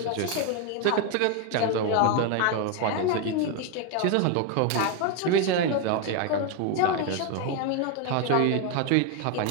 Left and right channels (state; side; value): different; both; correlation 0.01